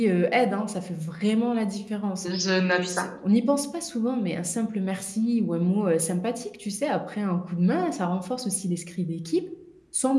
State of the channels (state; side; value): identical; both; correlation 1.00